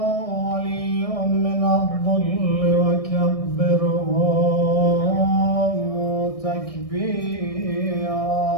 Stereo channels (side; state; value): right; late; 1.6 ms